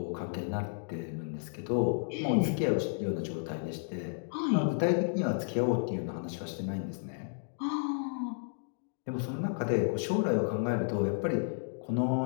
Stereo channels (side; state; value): right; silent; digital silence